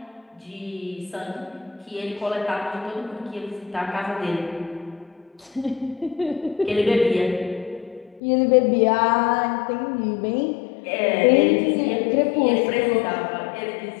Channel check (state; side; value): drops out; right; at 8.2 s